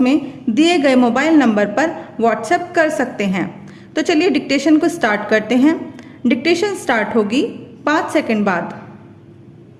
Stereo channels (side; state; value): both; identical; correlation 1.00